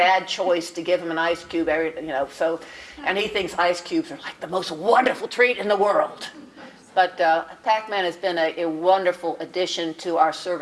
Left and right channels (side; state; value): both; identical; correlation 1.00